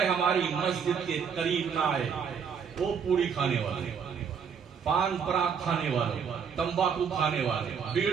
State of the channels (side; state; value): left; quieter; 6.8 dB